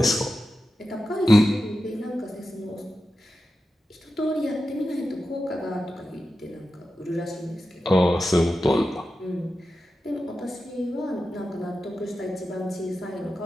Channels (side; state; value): both; normal; correlation 0.92